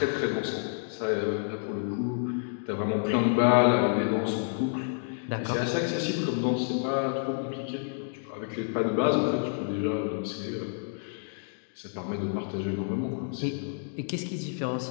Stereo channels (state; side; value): silent; right; digital silence